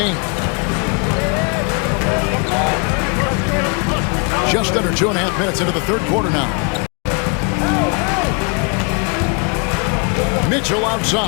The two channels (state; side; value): quieter; right; 35.3 dB